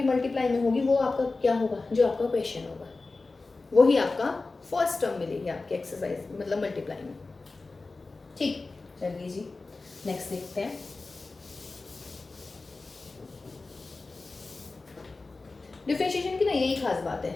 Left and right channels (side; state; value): right; quieter; 3.6 dB